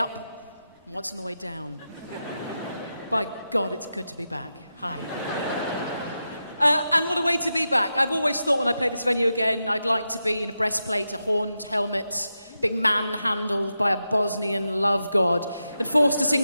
and once on the way down. By God, it's good to be back. Hi. And what a way to be back. I've always thought when I play this venue again, I'd like to be in a breastplate, a horned helmet, being manhandled by a Bosnian love god, and forced to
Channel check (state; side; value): inverted; both; correlation -0.89